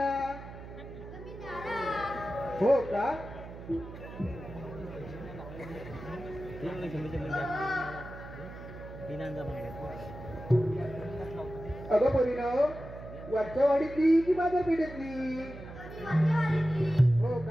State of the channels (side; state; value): right; noise; hum, 13 dB below the sound